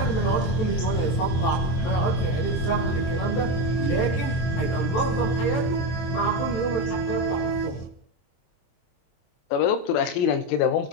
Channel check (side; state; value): right; late; 24 ms